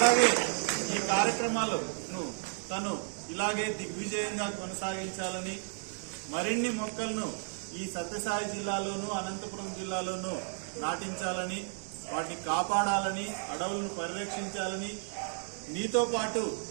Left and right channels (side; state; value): left; silent; 56 dB below the other